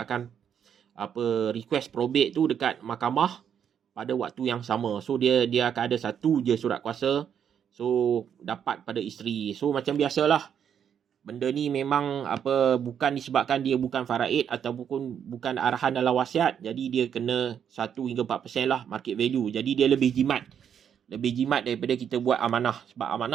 akan request probate tu dekat mahkamah pada waktu yang sama. So dia akan ada satu je surat kuasa. So dapat pada isteri. So macam biasalah, benda ni memang bukan disebabkan dia bukan faraid ataupun bukan arahan dalam wasiat, jadi dia kena 1 hingga 4% lah market value. Jadi dia lebih jimat daripada kita buat amanah. Sebab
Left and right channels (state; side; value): quieter; left; 8.4 dB